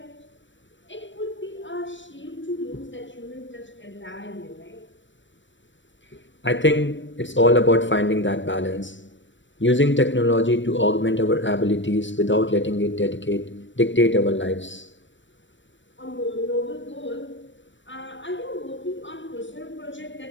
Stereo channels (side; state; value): right; late; 0.54 ms